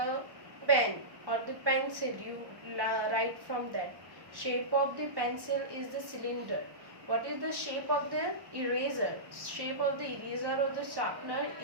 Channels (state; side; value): late; left; 1.1 ms